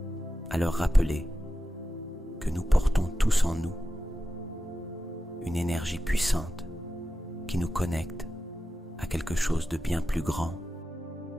à leur rappeler que nous portons tous en nous une énergie puissante qui nous connecte à quelque chose de bien plus grand.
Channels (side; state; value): both; normal; correlation 0.92